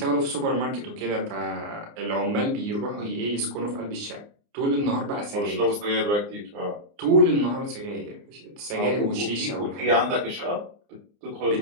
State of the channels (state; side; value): late; left; 29 ms